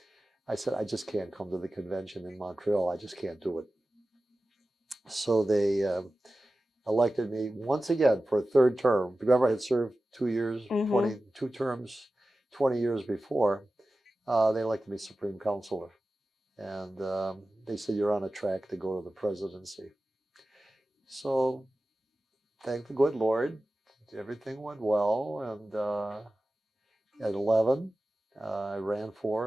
I said, I just can't come to the convention in Montreal. I just can't do it. So they elected me once again for a 3rd term. Remember, I had served 2 years, 22 terms, 20 years before. They elected me Supreme Counselor. And they said, "You're on a track to go to the presidency." So thank the good Lord, everything went well. And at 11, I ran for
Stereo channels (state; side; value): normal; both; correlation 0.95